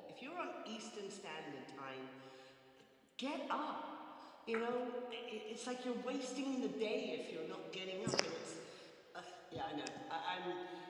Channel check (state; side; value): identical; both; correlation 1.00